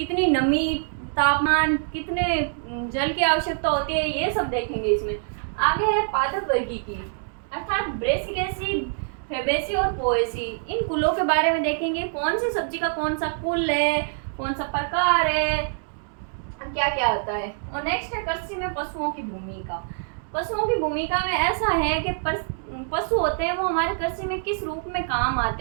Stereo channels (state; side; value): silent; left; digital silence